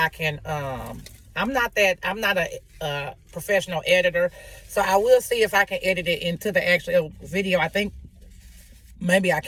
can. I'm not a professional editor, so I will see if I can edit it into the actual video. I think maybe I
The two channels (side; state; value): both; identical; correlation 1.00